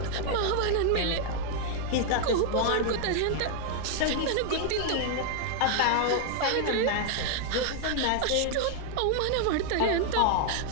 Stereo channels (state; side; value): different; both; correlation 0.00